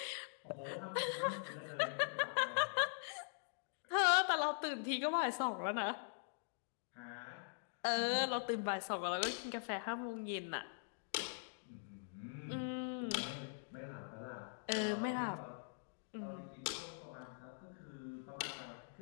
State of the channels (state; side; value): silent; right; digital silence